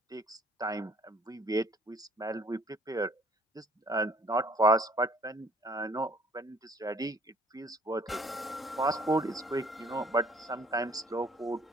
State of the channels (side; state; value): both; normal; correlation 0.59